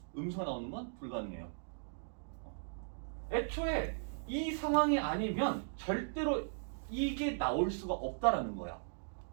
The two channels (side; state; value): left; silent; digital silence